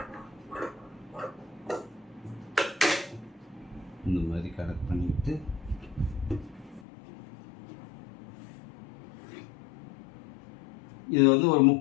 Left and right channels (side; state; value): right; drops out; at 6.9 s